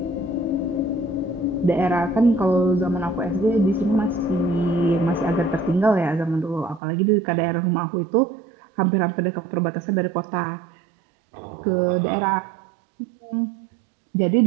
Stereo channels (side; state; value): left; drops out; at 6.8 s